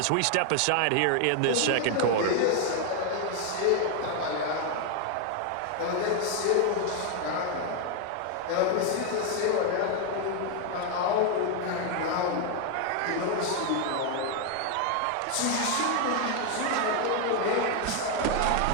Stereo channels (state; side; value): different; both; correlation 0.00